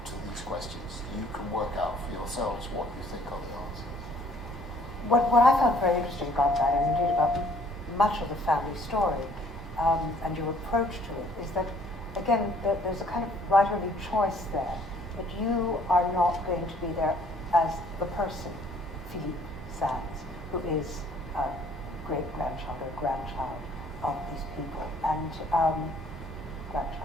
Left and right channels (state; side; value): normal; both; correlation 0.60